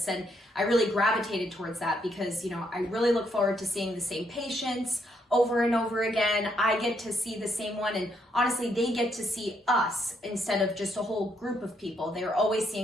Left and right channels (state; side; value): normal; both; correlation 0.74